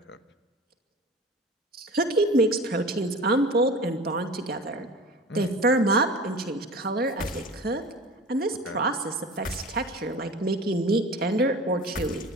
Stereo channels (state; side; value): normal; both; correlation 0.37